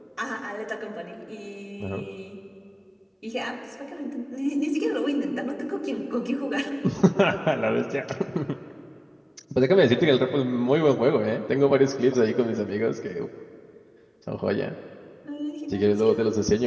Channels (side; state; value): both; identical; correlation 1.00